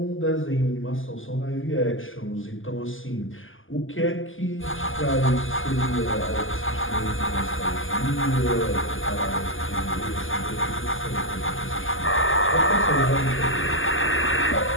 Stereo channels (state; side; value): late; right; 0.58 ms